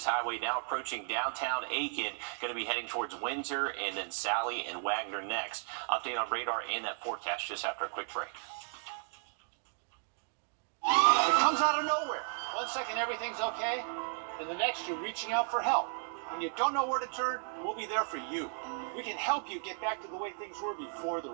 Highway, now approaching downtown Aiken, going to be heading towards Windsor and then Sally and Wagner next. Update on radar and that forecast just after a quick break. It comes out of nowhere. 1 second everything's okay, and the next you're reaching out for help. When you don't know where to turn, we'll be there for you. We can help you get back to the way things were before the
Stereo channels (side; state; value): left; silent; 55 dB below the other